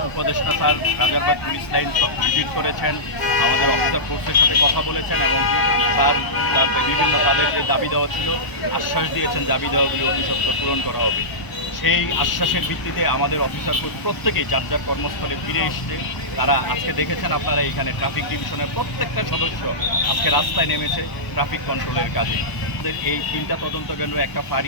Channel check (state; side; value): late; right; 1.0 ms